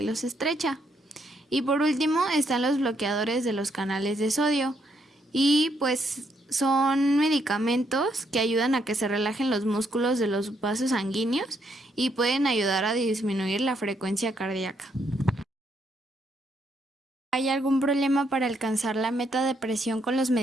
los estrecha. Y por último están los bloqueadores de los canales de sodio y pues son medicamentos que ayudan a que se relajen los músculos de los vasos sanguíneos y pueden ayudar a disminuir la frecuencia cardíaca. ¿Hay algún problema para alcanzar la meta de presión con los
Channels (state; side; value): normal; both; correlation 0.74